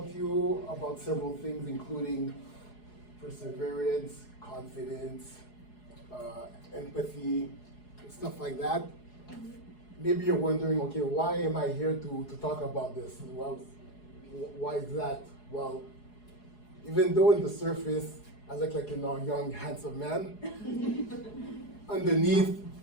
to you about several things, including perseverance, confidence, empathy, stuff like that. Maybe you're wondering, okay, why am I here to talk about this? Well, why is that? Well, even though in the surface, I look like a young, handsome man, underneath,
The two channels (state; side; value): late; right; 4.8 ms